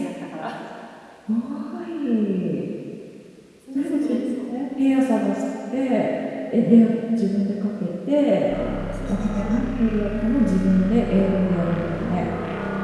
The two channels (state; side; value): identical; both; correlation 1.00